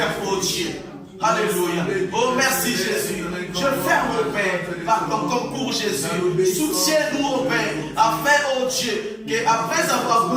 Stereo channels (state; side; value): identical; both; correlation 1.00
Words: oh Dieu. Alléluia. Oh merci Jésus. Je ferme, oh Père, par ton concours Jésus. Soutiens-nous, oh Père, afin, oh Dieu, qu'après avoir